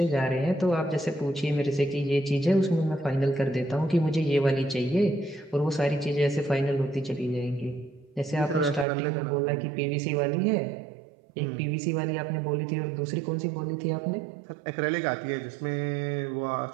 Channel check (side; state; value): left; drops out; at 8.8 s